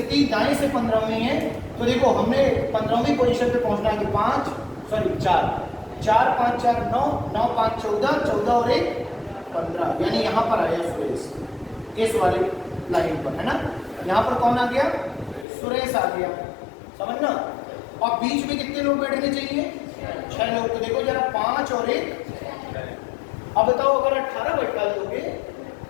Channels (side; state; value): right; drops out; at 15.5 s